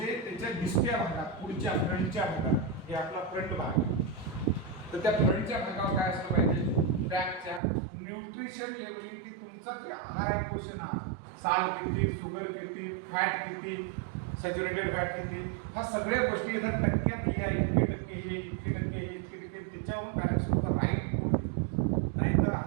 त्याच्या दिसत्या भागात, पुढच्या फ्रंटच्या भागात, हे आपला फ्रंट भाग, तर त्या फ्रंटच्या भागावर काय असलं पाहिजे, पॅकच्या न्यूट्रिशन लेवलिंग की तुमचा जे आहार आहे क्वेश्चन आहे, साल किती, शुगर किती, फॅट किती, सॅच्युरेटेड फॅट किती, ह्या सगळ्या गोष्टी इथं टक्क्यात लिहा, इतके टक्के हे, इतके टक्के हे, इतके टक्के, त्याच्यावर पॅरेंट्स लोक राईट फूड, नाहीतर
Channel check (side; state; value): left; drops out; at 7.6 s